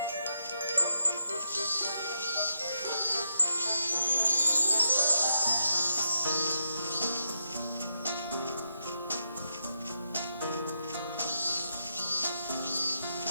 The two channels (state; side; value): inverted; both; correlation -0.80